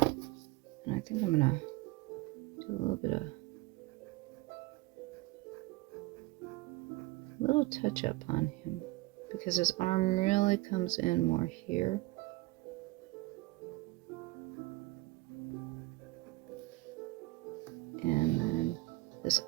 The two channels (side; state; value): left; quieter; 20.5 dB